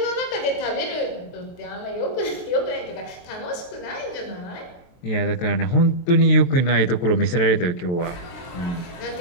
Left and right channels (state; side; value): late; right; 23 ms